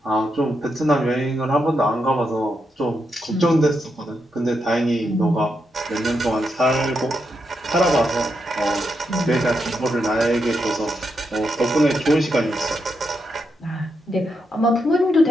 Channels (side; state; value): both; normal; correlation 0.83